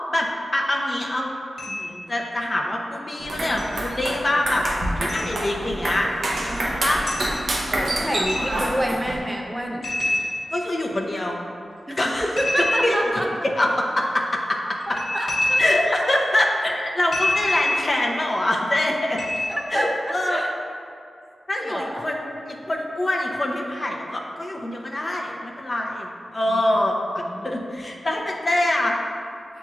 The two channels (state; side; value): normal; both; correlation 0.94